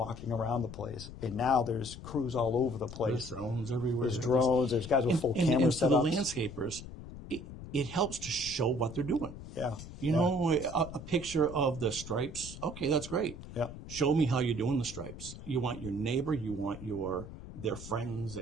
around the place, and now there's crews all over the place. There's drones everywhere. There's drones. There's guys with full camera and setups. for the landscapers, it helps to show what they're doing. Yeah. A picture of the stripes. Okay, that's great. Yeah. Show me how you're doing the stripes. You want your neighbor, you want their friends,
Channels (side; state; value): left; noise; rumble, 12 dB below the sound